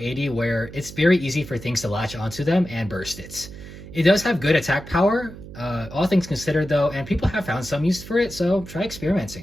where it's very easy for things to latch onto them and burst it. It does have good attack power, all things considered though, and people have found some use for it, so try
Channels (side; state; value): right; noise; hum, 14 dB below the sound